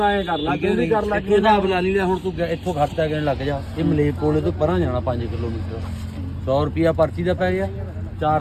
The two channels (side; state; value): both; identical; correlation 1.00